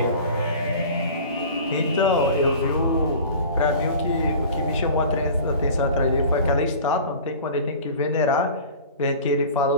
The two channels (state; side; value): inverted; both; correlation -0.40